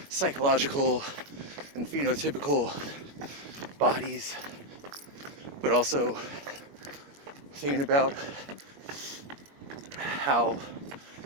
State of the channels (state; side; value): late; left; 21 ms